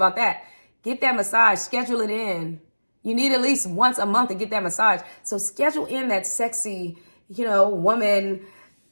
that. Get that massage. Schedule it in. You need at least once a month to get that massage. So schedule in that sexy, woman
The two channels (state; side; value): inverted; both; correlation -1.00